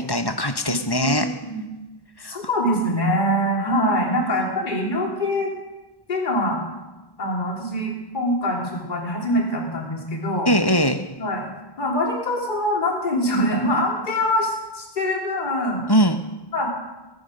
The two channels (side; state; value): right; late; 1.1 ms